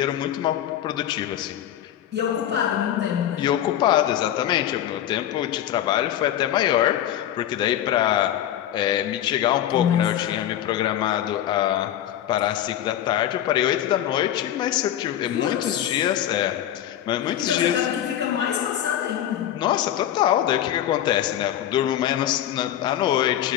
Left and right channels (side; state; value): right; quieter; 11.5 dB